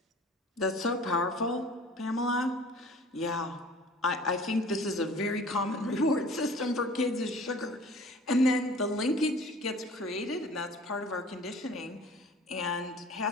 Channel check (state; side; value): normal; both; correlation 0.47